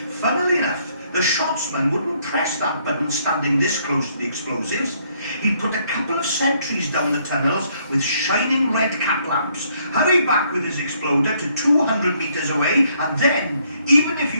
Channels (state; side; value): inverted; both; correlation -0.68